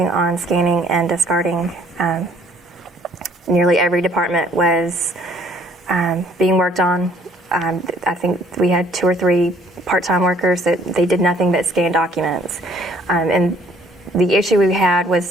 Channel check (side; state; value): both; normal; correlation 0.60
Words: on scanning and discarding. Nearly every department was being worked on. I think we had 2 or 3 part-time workers that they did nothing but scan documents. And the issue we had